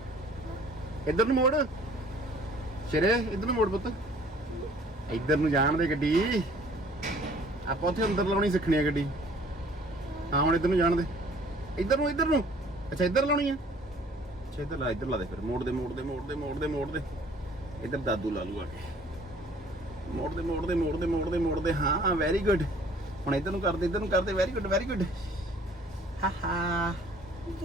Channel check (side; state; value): both; normal; correlation 0.55